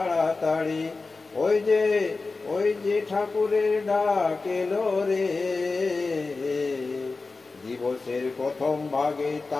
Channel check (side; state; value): right; quieter; 3.9 dB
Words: ওই যে ঠাকুরের ডাক এলো রে। দিবসের প্রথম ভাগে